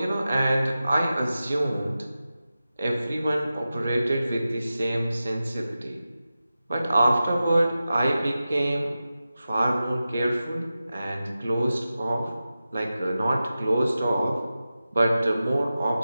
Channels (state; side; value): inverted; both; correlation -0.93